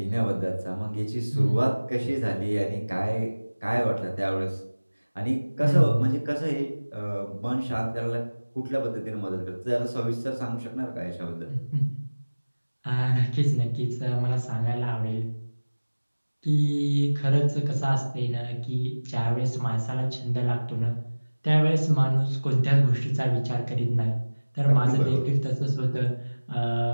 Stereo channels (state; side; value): inverted; both; correlation -1.00